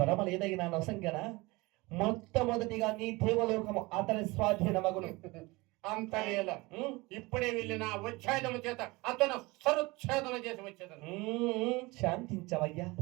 వరమలేదైనా నొసంగన మొట్టమొదటిగా నీ దేవలోకము అతని స్వాధీనమగును. అంతలేల ఇప్పుడే వెళ్ళిన ఉచ్ఛేదము చేత అతను సరుచ్ఛేదన చేసి వచ్చేదను. శాంతించవయ్యా.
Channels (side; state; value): left; quieter; 23.2 dB